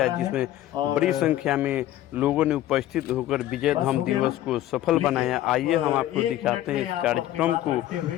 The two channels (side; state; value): right; quieter; 13.7 dB